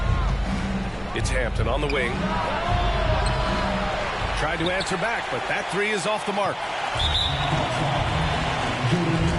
It's Hampton on the wing. Tried to answer back, but that three is off the mark.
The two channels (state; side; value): identical; both; correlation 1.00